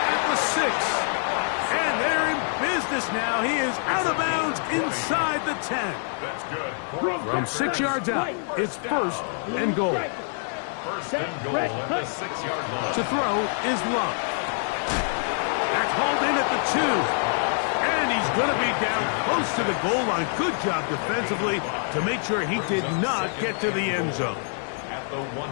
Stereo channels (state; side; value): silent; right; 61 dB below the other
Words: at the 6. And they're in business now. He is out of bounds inside the 10. That's good. From 6 yards out, it's first and goal. First and goal at the 6-yard line. To throw is Love. That's hauled in at the 2. And he's going to be down close to the goal line. Good job defensively to make sure he did not get to the end zone.